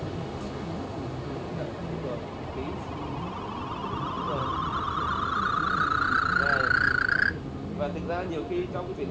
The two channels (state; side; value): identical; both; correlation 1.00